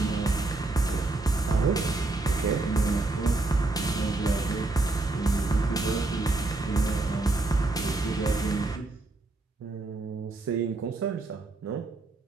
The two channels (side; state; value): left; quieter; 3.2 dB